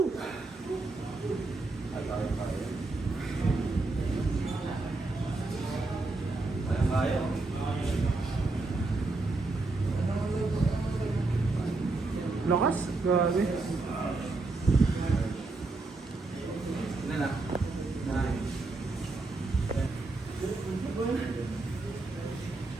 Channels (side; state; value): left; quieter; 3.3 dB